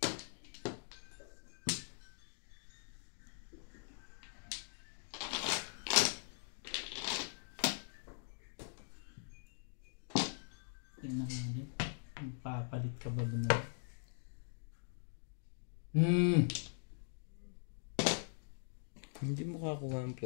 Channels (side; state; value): right; silent; digital silence